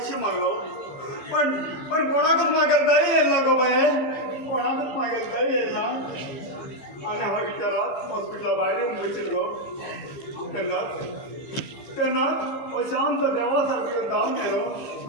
मागलो पण पण कोणाकच मागेल तरी येईल ना गो बाय कोणाकच मागेल तरी येईल ना आणि हा विचारात हॉस्पिटला बाहेर येऊन बसेल गो त्यांना शांत देवासारखं जाऊन गेलो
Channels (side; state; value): right; late; 15 ms